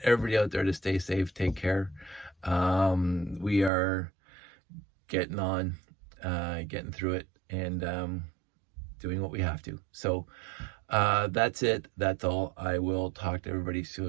everybody out there to stay safe, take care. We are getting on, getting through it, and doing what we have to. So that's it. That's all. I will talk to everybody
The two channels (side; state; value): left; drops out; at 3.7 s